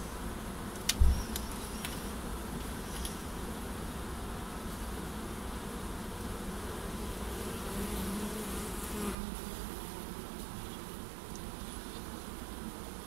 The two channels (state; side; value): drops out; left; at 9.2 s